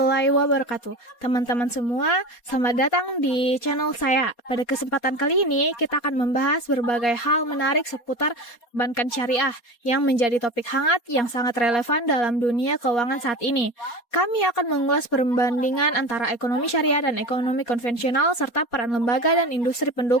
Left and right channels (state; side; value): late; right; 4.2 ms